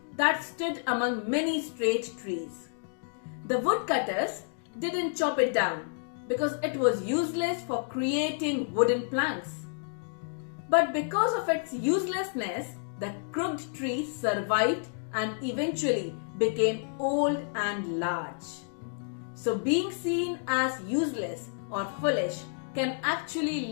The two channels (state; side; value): silent; right; digital silence